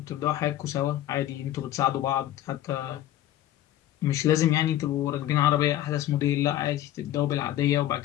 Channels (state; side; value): quieter; right; 13.1 dB